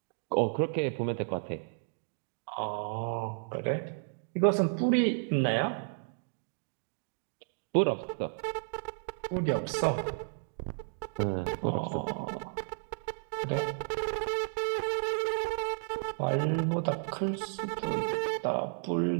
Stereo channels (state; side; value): silent; left; digital silence